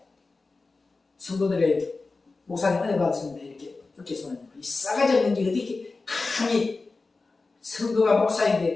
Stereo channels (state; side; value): quieter; right; 3.8 dB